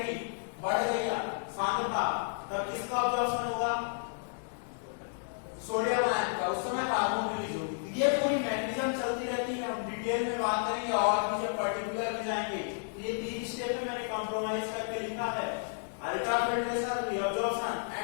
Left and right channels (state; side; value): silent; right; digital silence